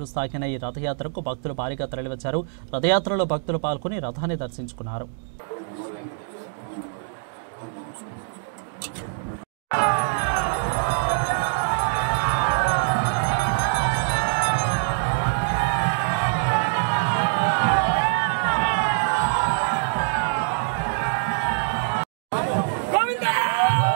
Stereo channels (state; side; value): silent; left; digital silence